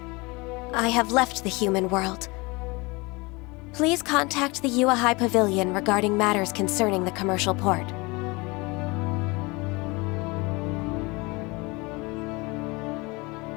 I have left the human world. Please contact the Yua High Pavilion regarding matters concerning the commercial port.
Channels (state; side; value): quieter; right; 25.5 dB